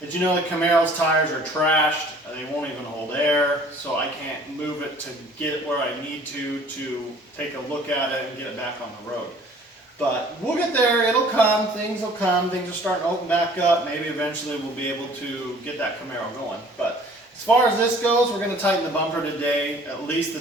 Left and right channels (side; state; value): both; normal; correlation 0.52